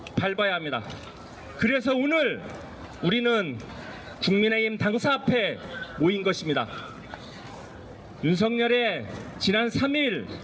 밟아야 합니다. 그래서 오늘 우리는 국민의힘 당사 앞에 모인 것입니다. 윤석열의 지난 3일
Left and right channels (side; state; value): both; identical; correlation 1.00